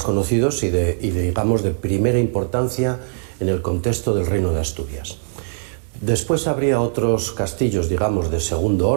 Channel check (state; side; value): silent; left; 63 dB below the other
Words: conocidos y digamos, de primera importancia en el contexto del Reino de Asturias. Después habría otros castillos, digamos, de segundo